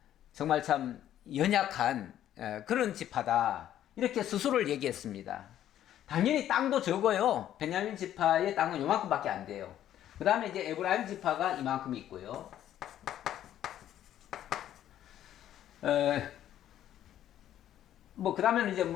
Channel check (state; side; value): quieter; right; 11.6 dB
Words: 정말 참 연약한 그런 지파다 이렇게 스스로를 얘기했습니다. 당연히 땅도 적어요. 베냐민 지파의 땅은 요만큼밖에 안 돼요. 그 다음에 이제 에브라임 지파가 이만큼 있고요. 그 다음에는 이제